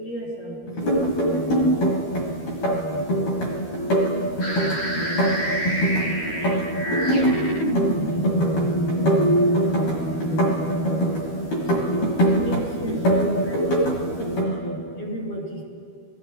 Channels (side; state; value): right; late; 12 ms